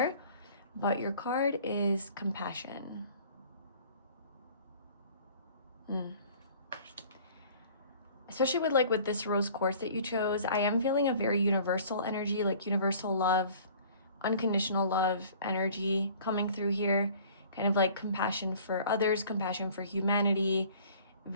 But your card is compassion. Especially with this rose quartz that you chose, I am feeling a very universal energy, like universal love, unconditional love energy coming through here. Kind of like compassion for others, compassion for humanity,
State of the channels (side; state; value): both; inverted; correlation -0.50